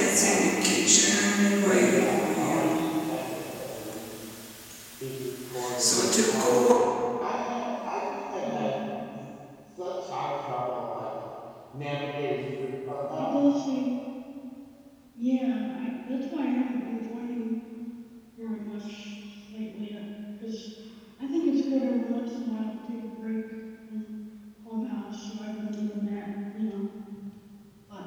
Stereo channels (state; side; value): identical; both; correlation 1.00